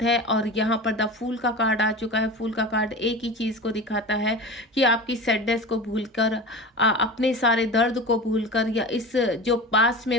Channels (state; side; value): normal; both; correlation 0.31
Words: है। और यहाँ पर द फूल का कार्ड आ चुका है। फूल का कार्ड एक ही चीज़ को दिखाता है कि आपकी सैडनेस को भूलकर, अपने सारे दर्द को भूलकर, या इस जो पास में